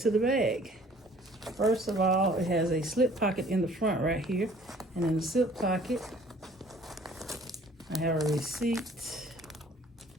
the bag. First of all, it has a slip pocket in the front right here. And in the slip pocket, I have a receipt.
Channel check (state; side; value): normal; both; correlation 0.54